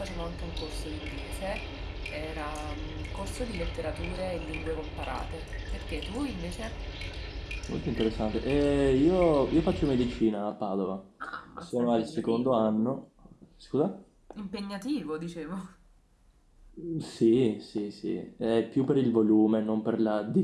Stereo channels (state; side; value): identical; both; correlation 1.00